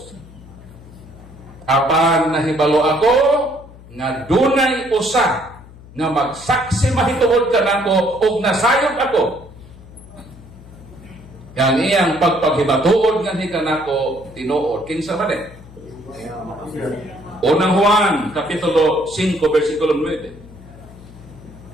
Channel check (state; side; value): noise; left; hum, 20 dB below the sound